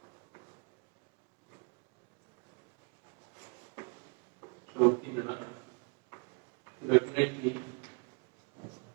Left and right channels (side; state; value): left; quieter; 34.9 dB